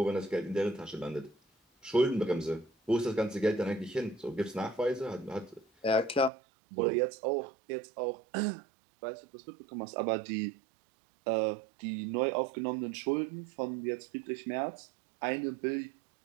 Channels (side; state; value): left; drops out; at 6.3 s